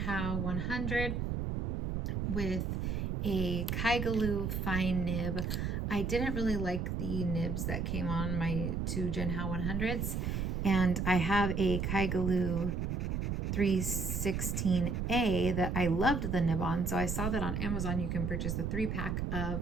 100 with a Kaigaloo fine nib. I didn't really like the nibs that came on my two Jinhao 100s, and I have a Kaigaloo 316A that I loved the nib on, so I saw that on Amazon you can purchase the 3-pack of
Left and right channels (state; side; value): noise; right; rumble, 1 dB below the sound